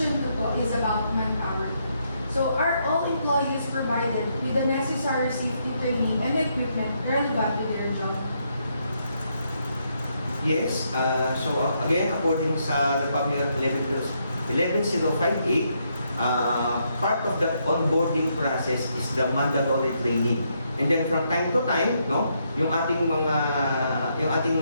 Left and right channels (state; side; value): inverted; both; correlation -0.77